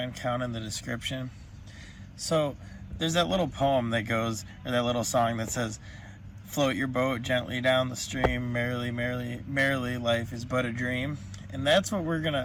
account in the description. So there's that little poem that goes, or that little song that says, float your boat gently down the stream, merrily, merrily, merrily, life is but a dream. And that's what we're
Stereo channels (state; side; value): identical; both; correlation 1.00